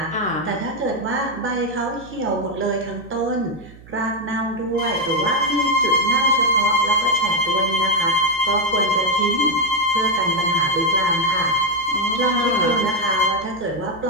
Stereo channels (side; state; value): right; noise; hum, 21 dB below the sound